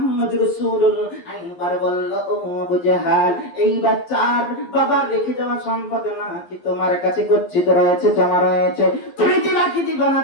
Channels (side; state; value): right; late; 11 ms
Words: রাসূলুল্লাহ একবার বলল, ও আবু জেহেল, এই বাচ্চার বাবার রেখে যাওয়া সম্পদ নাকি তোমার কাছে গচ্ছিত রয়েছে, জমা রয়েছে, তুমি দিবা কি দিবা না,